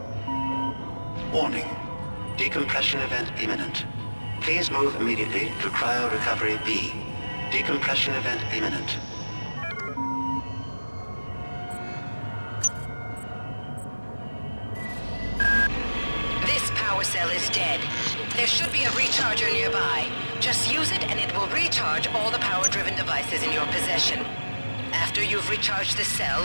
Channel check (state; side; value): inverted; both; correlation -1.00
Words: Warning. Decompression event imminent. Please move immediately to cryo recovery B. Decompression event imminent. This power cell is dead. There should be a recharger nearby. Just use it and it will recharge all the power-driven devices in your possession. After you've recharged the